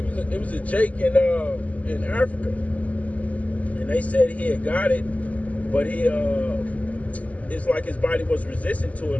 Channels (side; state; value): right; late; 0.072 ms